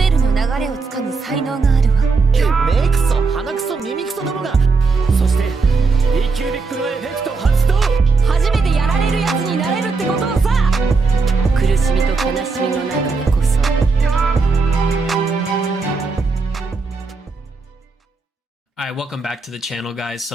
エルの流れをつかむ才能があるわ。目クソ鼻クソ耳クソどもがそして E キュービックのエフェクト発動初めてやられるやつになれるってことをさ。苦しみと悲しみの中でこそ。Alright, welcome back to the channel, guys.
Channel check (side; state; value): left; quieter; 4.2 dB